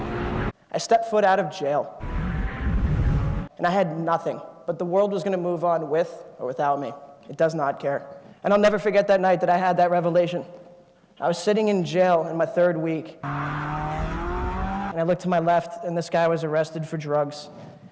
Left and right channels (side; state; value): both; identical; correlation 1.00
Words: I stepped foot out of jail, and I had nothing, but the world was going to move on with or without me. It does not care. And I'll never forget that night that I had that revelation. I was sitting in jail in my 3rd week, and I looked to my left, and this guy was arrested for drugs,